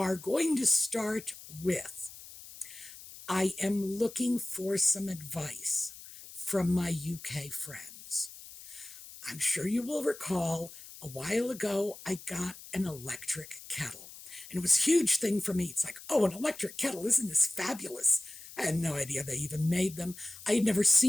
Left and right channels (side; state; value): left; noise; hiss, 16 dB below the sound